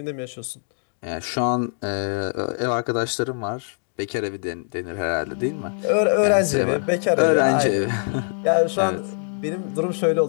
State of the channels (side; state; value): right; silent; digital silence